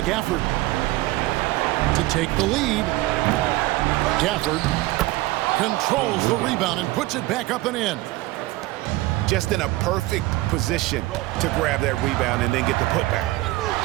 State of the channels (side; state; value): left; quieter; 18.8 dB